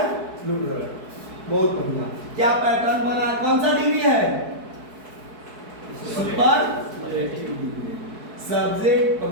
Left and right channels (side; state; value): left; late; 4.6 ms